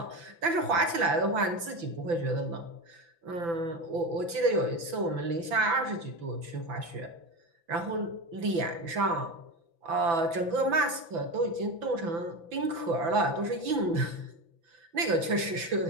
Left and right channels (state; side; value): late; left; 5.9 ms